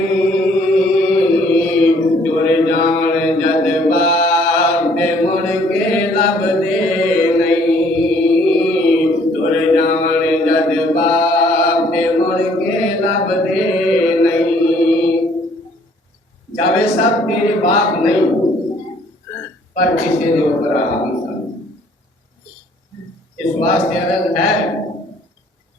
جاوے صاحب تیرے باپ نہیں پر کسی دے اوپر آہم سن اس واسطے عرض ہے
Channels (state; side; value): normal; both; correlation 0.61